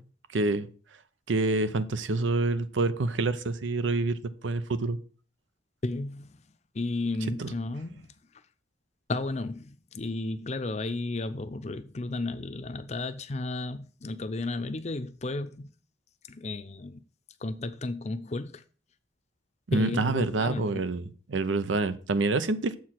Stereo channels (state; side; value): normal; both; correlation 0.46